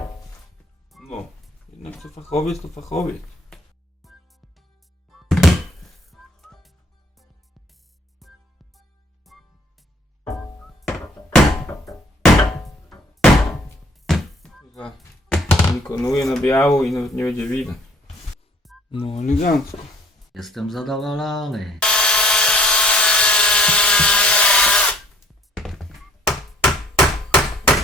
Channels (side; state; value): both; normal; correlation 0.60